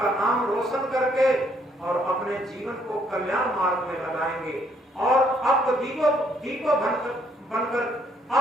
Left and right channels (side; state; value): both; normal; correlation 0.68